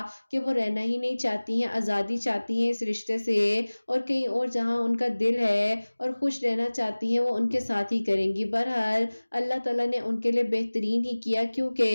کہ وہ رہنا ہی نہیں چاہتی ہیں، آزادی چاہتی ہیں اس رشتے سے، اور کہیں اور جہاں ان کا دل ہے اور خوش رہنا چاہتی ہیں وہ ان کے ساتھ ہی کریں گی۔ بہرحال اللہ تعالیٰ نے ان کے لیے بہترین ہی کیا،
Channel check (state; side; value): inverted; both; correlation -1.00